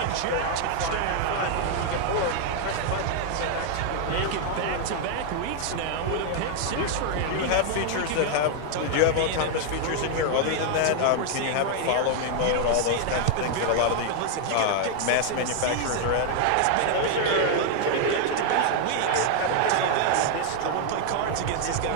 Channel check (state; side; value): different; both; correlation 0.00